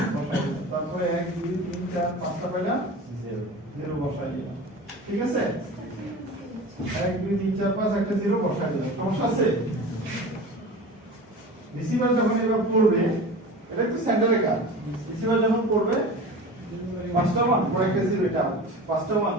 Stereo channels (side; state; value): both; normal; correlation 0.34